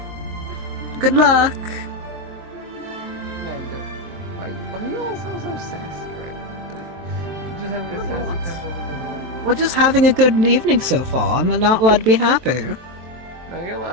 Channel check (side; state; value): left; late; 23 ms